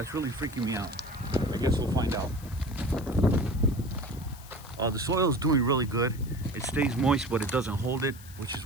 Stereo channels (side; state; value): left; noise; hiss, 19 dB below the sound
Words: really freaking me out. I guess we'll find out. The soil is doing really good. It stays moist, but it doesn't hold it, which is